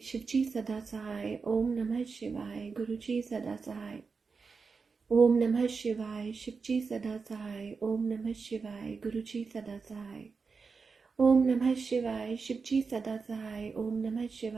शिव जी सदा सहाय। ओम नमः शिवाय, गुरु जी सदा सहाय। ओम नमः शिवाय, शिव जी सदा सहाय। ओम नमः शिवाय, गुरु जी सदा सहाय। ओम नमः शिवाय, शिव जी सदा सहाय। ओम नमः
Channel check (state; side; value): quieter; left; 4.9 dB